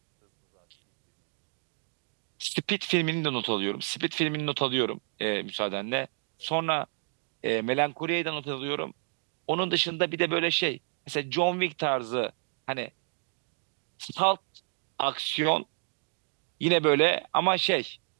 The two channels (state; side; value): silent; left; digital silence